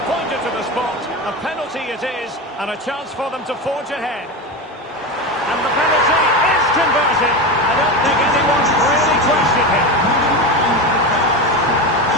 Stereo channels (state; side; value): normal; both; correlation 0.20